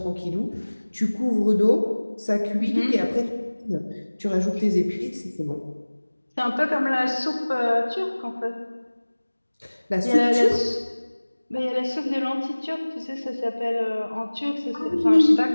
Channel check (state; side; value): inverted; both; correlation -1.00